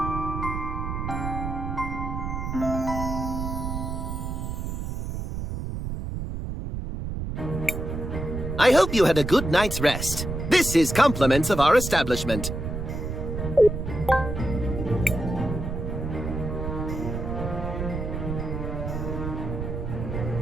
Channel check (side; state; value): right; noise; rumble, 4 dB below the sound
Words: I hope you had a good night's rest. This is compliments of our establishment.